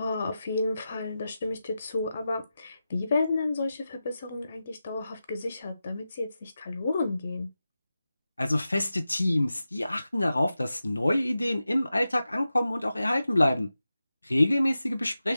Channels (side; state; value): both; inverted; correlation -0.92